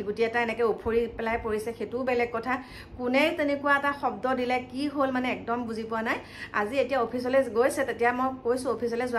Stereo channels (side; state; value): both; identical; correlation 1.00